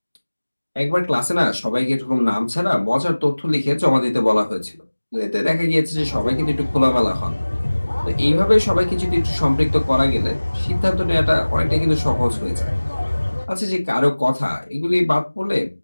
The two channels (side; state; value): both; inverted; correlation -1.00